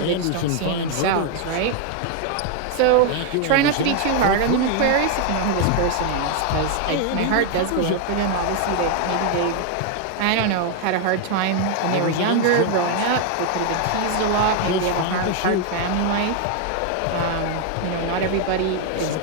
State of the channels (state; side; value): different; both; correlation 0.00